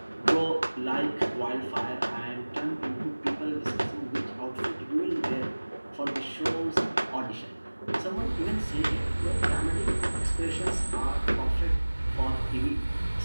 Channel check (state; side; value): inverted; both; correlation -1.00